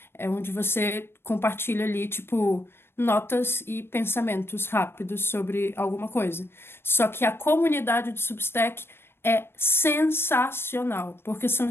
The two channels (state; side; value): late; right; 0.11 ms